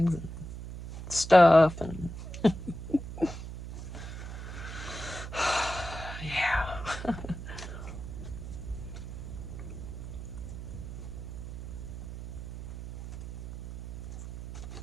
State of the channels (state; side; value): noise; right; hum, 9 dB below the sound